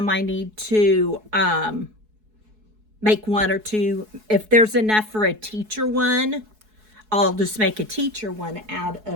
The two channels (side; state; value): left; late; 4.7 ms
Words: I need to make one or two. If there's enough for a teacher one, I'll just make a teacher one out